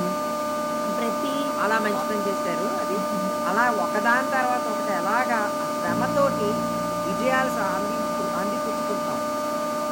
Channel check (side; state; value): both; identical; correlation 1.00